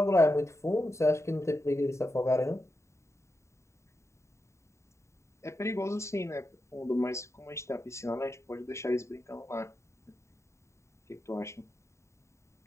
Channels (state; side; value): late; right; 0.14 ms